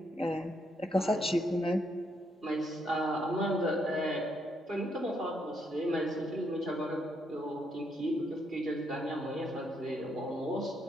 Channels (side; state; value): both; normal; correlation 0.76